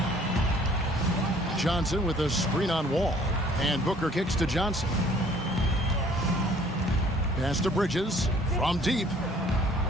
Johnson with a screen on Wall. And Booker kicks to Johnson. Pass to Bridges from deep.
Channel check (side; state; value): both; normal; correlation 0.56